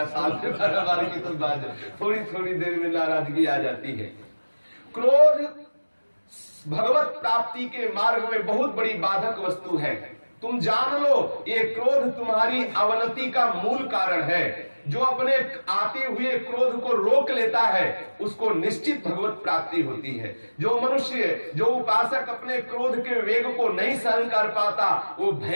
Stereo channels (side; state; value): both; inverted; correlation -1.00